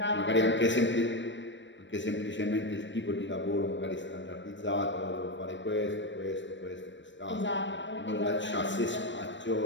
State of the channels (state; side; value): late; right; 0.53 ms